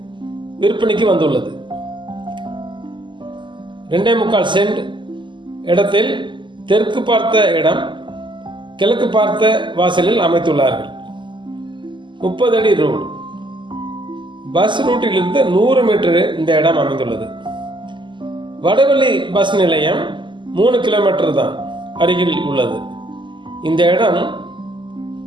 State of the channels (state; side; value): late; left; 0.23 ms